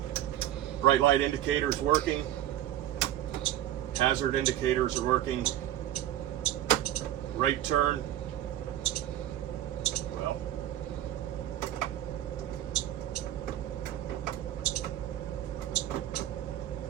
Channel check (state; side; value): quieter; left; 12.6 dB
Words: bright light indicator is working. Hazard indicators are working. Right turn. Well,